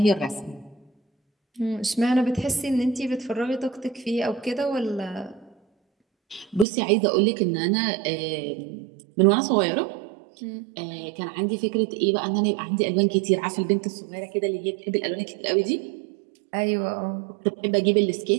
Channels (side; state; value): left; drops out; at 6.7 s